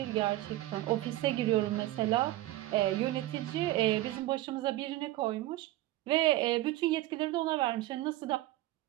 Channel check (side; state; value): left; quieter; 16.5 dB